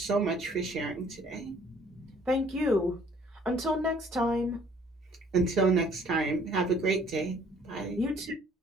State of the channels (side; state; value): both; normal; correlation 0.59